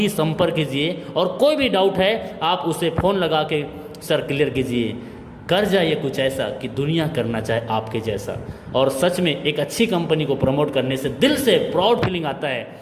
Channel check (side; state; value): both; identical; correlation 1.00